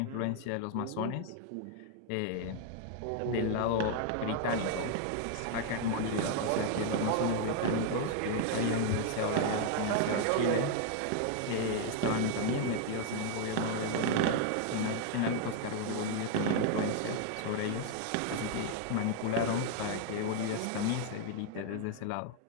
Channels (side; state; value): both; different; correlation 0.00